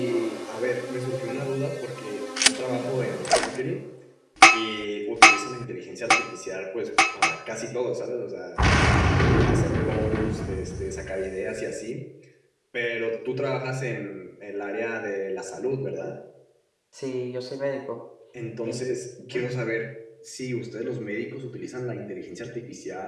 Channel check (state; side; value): identical; both; correlation 1.00